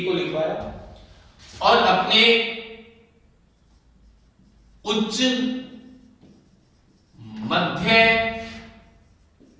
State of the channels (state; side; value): identical; both; correlation 1.00